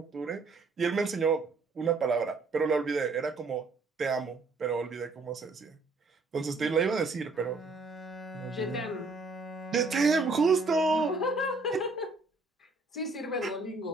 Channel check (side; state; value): left; quieter; 3.6 dB